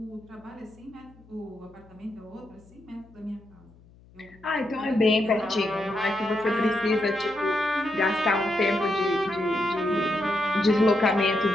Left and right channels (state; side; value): noise; left; hum, 26 dB below the sound